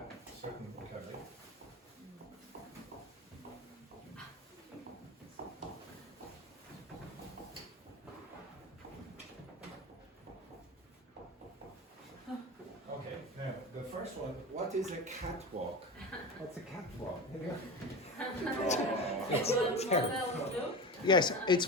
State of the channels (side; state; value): both; normal; correlation 0.26